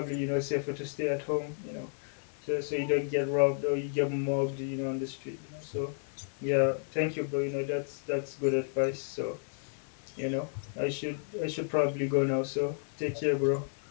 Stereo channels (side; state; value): right; silent; digital silence